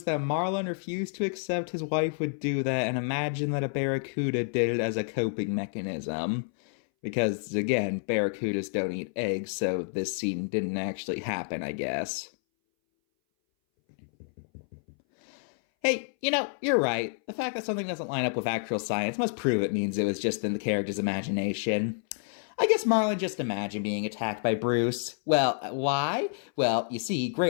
that Marlin refused to accept his wife would do that and imagined that a barracuda did it as a coping mechanism. Because, again, barracudas don't eat eggs, so this scene didn't actually happen, I guess. Hey, you're right. The fact that something doesn't line up with actual science must prove it means it was just in the character's imagination. I guess Marlin just imagined being attacked by Bruce. Well, why? Well, you see,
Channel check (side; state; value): right; silent; 59 dB below the other